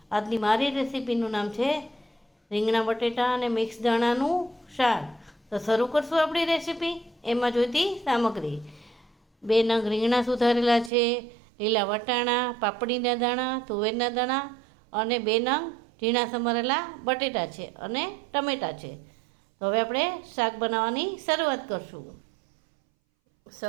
આજની મારી રેસીપીનું નામ છે રીંગણા બટેટા અને મિક્સ દાણાનું શાક. તો શરૂ કરશું આપણી રેસીપી. એમાં જોઈતી સામગ્રી: 2 નંગ રીંગણા સુધારેલા છે, લીલા વટાણા, પાપડીના દાણા, તુવેરના દાણા અને 2 નંગ ઝીણા સમારેલા બટેટા છે અને ટમેટાં છે. તો હવે આપણે શાક બનાવવાની શરૂઆત કરશું.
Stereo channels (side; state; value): left; drops out; at 10.9 s